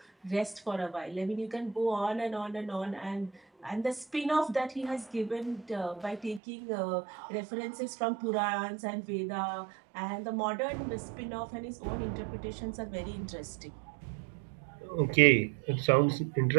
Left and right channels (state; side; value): drops out; left; at 6.4 s